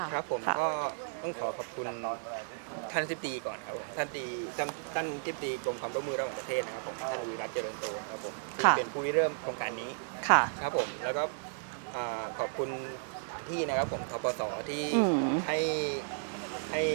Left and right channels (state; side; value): silent; left; digital silence